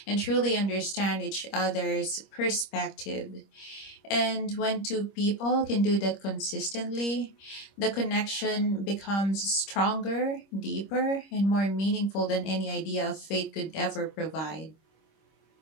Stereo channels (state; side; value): late; right; 25 ms